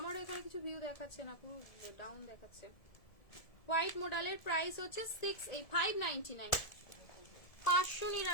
এখানে কিছু ভিউ দেখাচ্ছে না, পুরো ডাউন দেখাচ্ছে। হোয়াইট মডেলের প্রাইস হচ্ছে 599,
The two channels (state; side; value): late; right; 1.7 ms